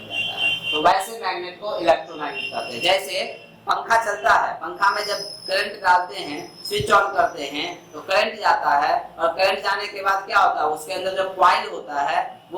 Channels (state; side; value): identical; both; correlation 1.00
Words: जाता है। तो वैसे मैग्नेट को इलेक्ट्रोमैग्नेट कहते हैं। जैसे पंखा चलता है, पंखा में जब करंट डालते हैं, स्विच ऑन करते हैं तो करंट जाता है, और करंट जाने के बाद क्या होता है, उसके अंदर जो कॉइल होता है